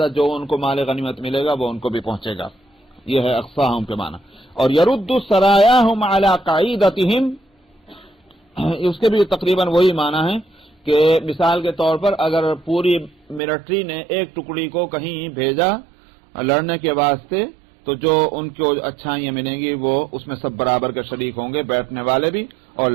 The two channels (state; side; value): drops out; left; at 13.4 s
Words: جو ان کو مال غنیمت ملے گا وہ ان کو بھی پہنچے گا. یہ ہے اقصاہم کے معنی. اور یرد سرایاہم علی قاعدتہم، اس کے بھی تقریباً وہی معنی ہے کہ مثال کے طور پر اگر پوری ملٹری نے ایک ٹکڑی کو کہیں بھیجا لڑنے کے واسطے تو جو ان کو اچھائیاں ملیں گی وہ اس میں سب برابر کے شریک ہوں گے، بیٹھنے والے بھی اور